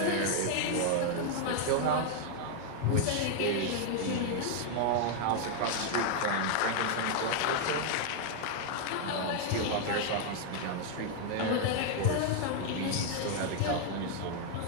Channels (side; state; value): both; different; correlation 0.00